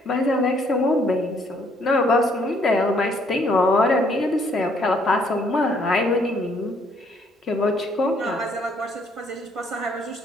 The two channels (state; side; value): normal; both; correlation 0.66